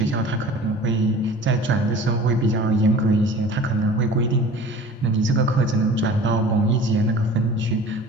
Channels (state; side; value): normal; both; correlation 0.42